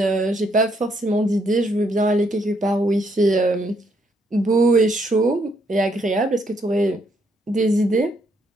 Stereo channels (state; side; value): normal; both; correlation 0.73